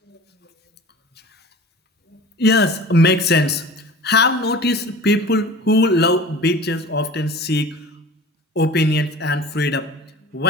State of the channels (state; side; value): normal; both; correlation 0.40